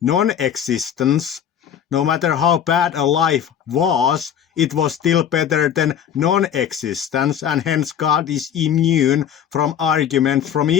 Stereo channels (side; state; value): right; quieter; 9.0 dB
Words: non-existence. No matter how bad a life was, it was still better than non-existence, and hence God is immune from arguments from